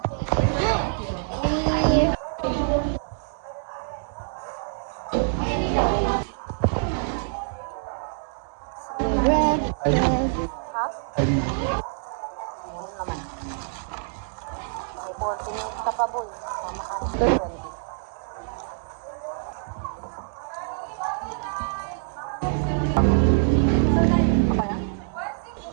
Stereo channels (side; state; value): left; silent; digital silence